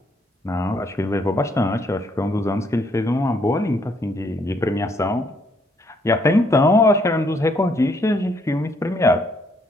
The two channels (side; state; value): both; normal; correlation 0.70